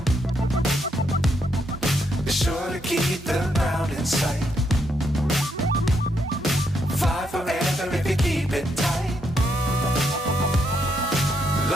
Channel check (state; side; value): normal; both; correlation 0.77